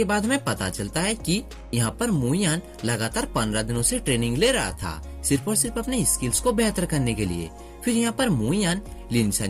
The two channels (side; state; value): both; identical; correlation 1.00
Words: बाद हमें पता चलता है कि यहाँ पर मुइयान लगातार 15 दिनों से ट्रेनिंग ले रहा था, सिर्फ और सिर्फ अपने स्किल्स को बेहतर करने के लिए। फिर यहाँ पर मुइयान